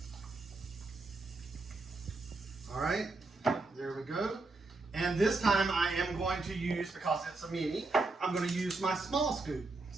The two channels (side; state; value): left; quieter; 3.4 dB